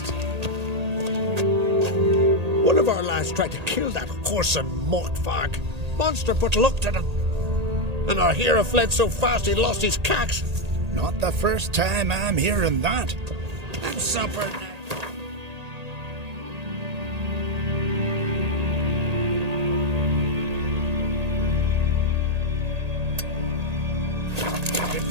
One of our lads tried to kill that whoreson mockfag. Monster put luck to them. And our hero fled so fast he lost his cax. Not the first time I'm hearing that. And supper. Good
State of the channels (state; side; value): late; left; 1.8 ms